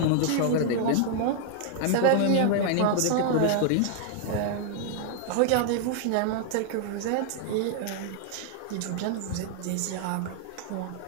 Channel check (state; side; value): different; both; correlation 0.00